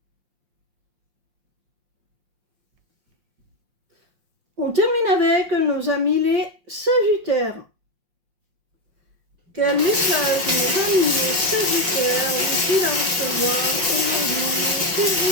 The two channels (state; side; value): late; left; 5.6 ms